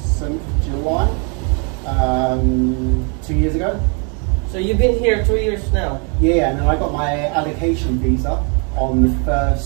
recent July, 2 years ago. So you've been here 2 years now? Yeah, and then I got my allocation visa on the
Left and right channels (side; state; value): left; quieter; 36.8 dB